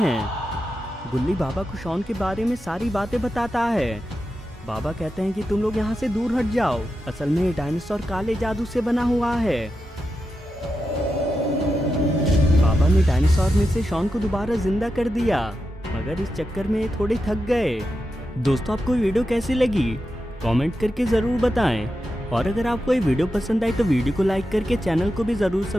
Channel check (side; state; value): both; normal; correlation 0.89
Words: गुल्ली बाबा को शॉन के बारे में सारी बातें बताता है। बाबा कहते हैं कि तुम लोग यहाँ से दूर हट जाओ, असल में ये डायनासोर काले जादू से बना हुआ है। बाबा ने डायनासोर में से शॉन को दोबारा जिंदा कर दिया, मगर इस चक्कर में ये थोड़े थक गए। दोस्तों, आपको वीडियो कैसी लगी कमेंट करके ज़रूर बताएं, और अगर आपको ये वीडियो पसंद आई तो वीडियो को लाइक करके चैनल को भी ज़रूर